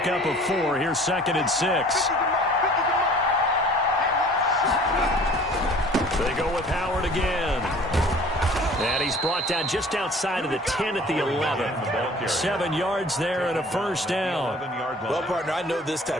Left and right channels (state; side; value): normal; both; correlation 0.49